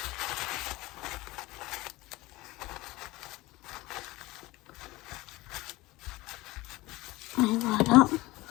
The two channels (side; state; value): right; quieter; 20.1 dB